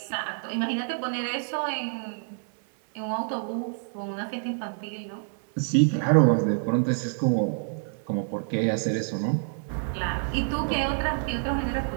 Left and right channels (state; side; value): silent; left; 60 dB below the other